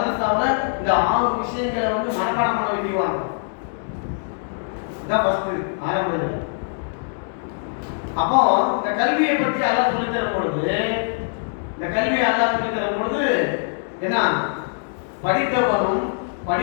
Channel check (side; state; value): right; silent; digital silence